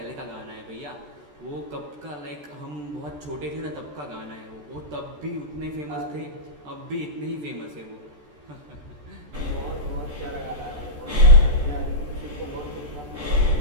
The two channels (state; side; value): late; left; 14 ms